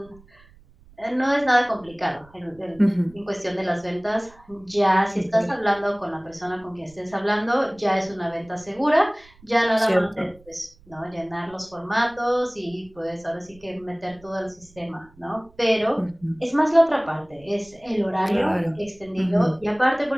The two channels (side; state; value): right; noise; rumble, 27 dB below the sound